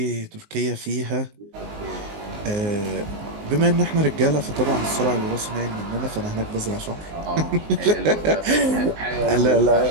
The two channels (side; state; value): left; late; 19 ms